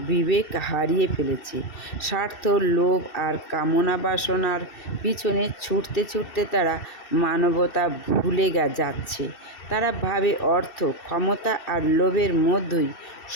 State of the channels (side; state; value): right; late; 2.7 ms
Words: বিবেক হারিয়ে ফেলেছে। স্বার্থ, লোভ আর কামনা বাসনার পিছনে ছুটতে ছুটতে তারা মানবতা ভুলে যাচ্ছে। তারা ভাবে অর্থ, ক্ষমতা আর লোভের মধ্যেই